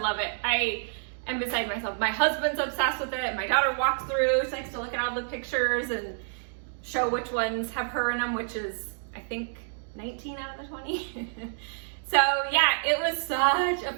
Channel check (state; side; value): silent; left; digital silence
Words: it. I am beside myself. My husband's obsessed with it. My daughter walks through, she likes to look at all the pictures and show which ones have her in them, which is, I think, 19 out of the 20. So yeah, it was such a